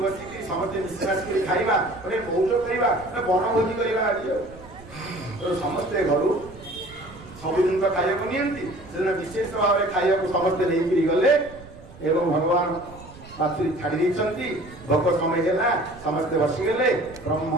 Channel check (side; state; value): right; noise; rumble, 19 dB below the sound